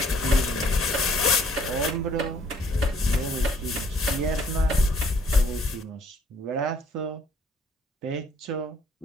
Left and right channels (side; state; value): both; normal; correlation 0.63